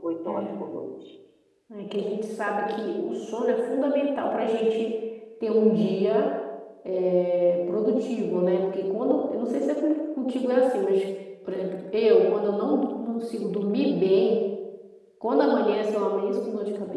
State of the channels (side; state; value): both; identical; correlation 1.00